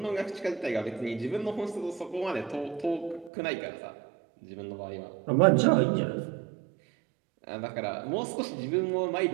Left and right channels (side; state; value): left; drops out; at 3.3 s